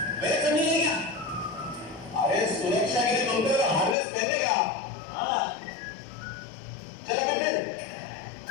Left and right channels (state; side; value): drops out; right; at 4.0 s